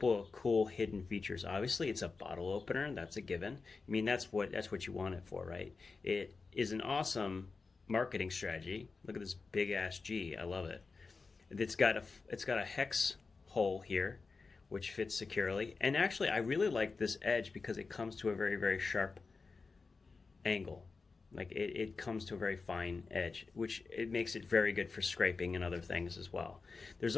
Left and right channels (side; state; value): right; quieter; 4.3 dB